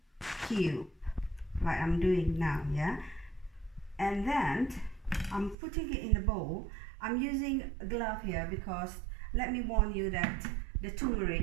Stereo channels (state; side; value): drops out; left; at 5.6 s